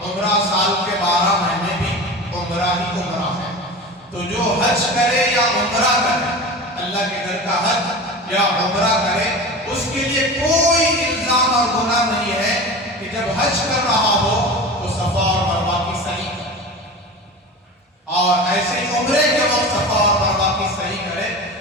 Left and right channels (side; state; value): both; normal; correlation 0.31